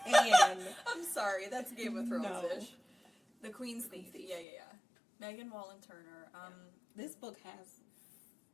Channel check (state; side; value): drops out; right; at 4.5 s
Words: Hand. I'm sorry, that's Game of Thrones-ish. The Queen's Thief. Yeah. Megan Wallen Turner. This book has